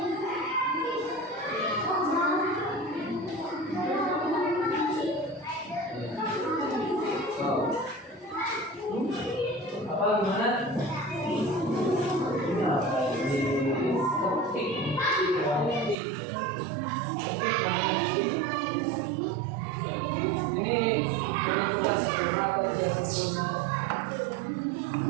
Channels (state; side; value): drops out; left; at 16.0 s